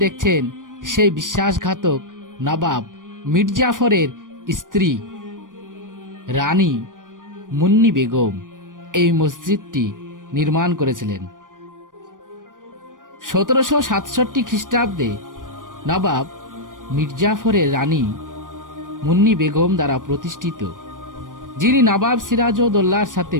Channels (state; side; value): late; left; 0.88 ms